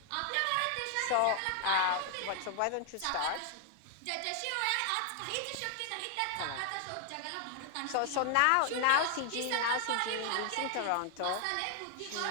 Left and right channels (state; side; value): different; both; correlation 0.00